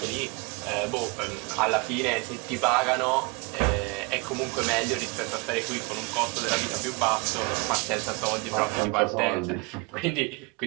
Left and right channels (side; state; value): left; quieter; 28.8 dB